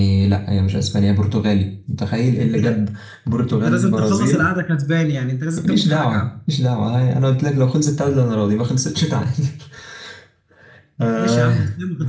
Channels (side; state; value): both; identical; correlation 1.00